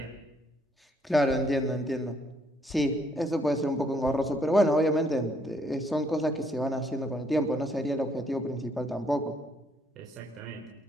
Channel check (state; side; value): normal; both; correlation 0.69